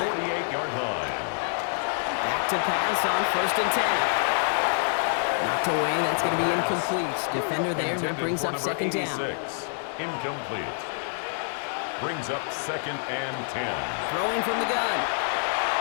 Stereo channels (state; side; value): silent; right; 57 dB below the other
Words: 48-yard line. Back to pass on 1st and 10. Knocked away, that's going to be incomplete. Defender there, that brings up 2nd down. Incomplete. Brings up 2nd and 10. Throwing from the gun.